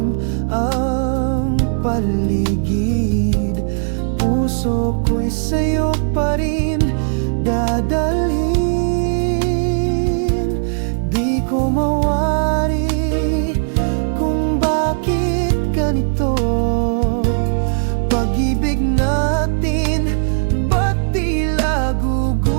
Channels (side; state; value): left; silent; 68 dB below the other